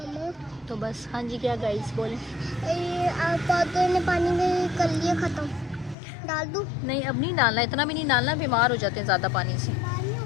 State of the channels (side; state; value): right; drops out; at 6.0 s